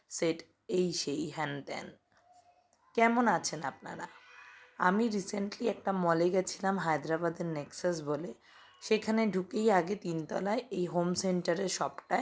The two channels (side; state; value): both; identical; correlation 1.00